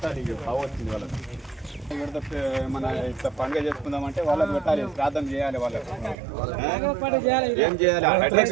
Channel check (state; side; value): drops out; left; at 6.2 s